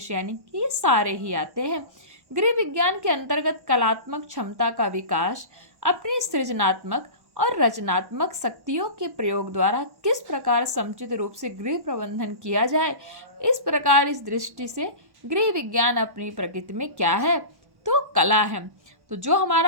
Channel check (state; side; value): late; left; 1.1 ms